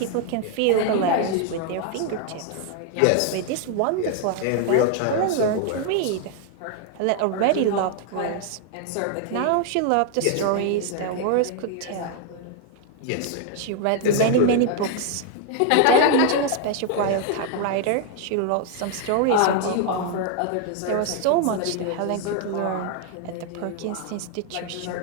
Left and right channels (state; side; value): different; both; correlation 0.00